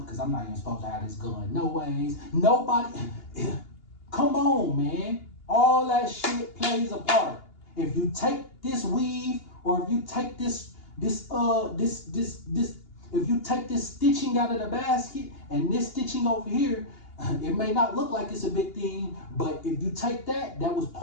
because I'm not even supposed to have this gun. No ways. Nobody. Come on, man. All that shit plays a part. If you take this weave, or if you take this if you take this stitching out of the basket and this stitching over here, it may not look like it's a big thing, but if you take that, that was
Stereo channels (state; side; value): late; right; 2.8 ms